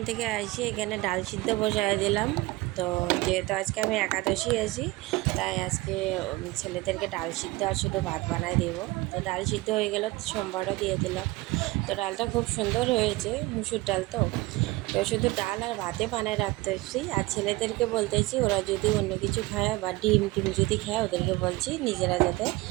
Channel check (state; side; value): quieter; left; 20.7 dB